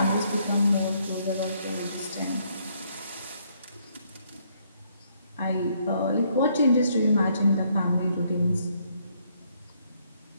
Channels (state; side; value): inverted; both; correlation -0.70